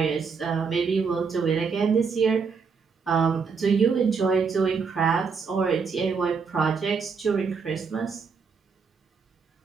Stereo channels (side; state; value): left; quieter; 5.5 dB